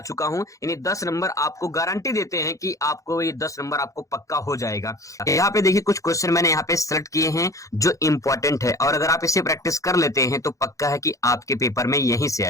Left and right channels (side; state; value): right; late; 0.16 ms